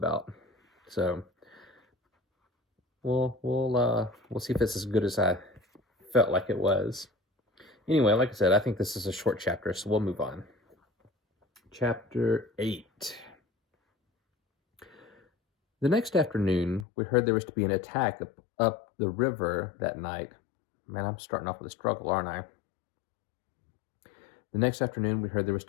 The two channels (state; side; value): drops out; right; at 16.9 s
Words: So we'll see if it's as good as I felt like it was. Anyway, like I said, I think this is a short chapter, so we'll move on. Chapter 8. The next afternoon, we heard there was to be an attack up the river that night. Man, I'm starting off with a struggle, aren't I? The next afternoon, we heard there was